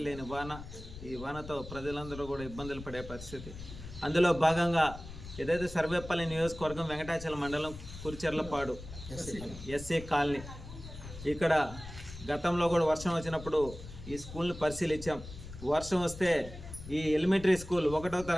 లేని వాన. ఈ వానతో ప్రజలందరూ కూడా ఇబ్బందులు పడే పరిస్థితి. అందులో భాగంగా ఏదైతే సర్వేపల్లి నియోజకవర్గం వెంకటాచలం మండలం కురిచెర్లపాడు ఎస్సీ కాలనీ, ఇక్కడ గతంలో కూడా వర్షం వచ్చినప్పుడు ఈ స్కూల్ని పరిశీలించాం. వర్షం వస్తే ఈ ఎలిమెంటరీ స్కూల్ 1వ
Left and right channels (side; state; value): left; noise; rumble, 13 dB below the sound